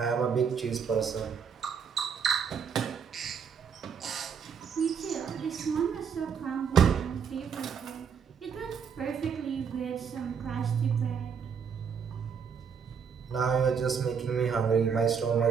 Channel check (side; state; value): left; quieter; 6.7 dB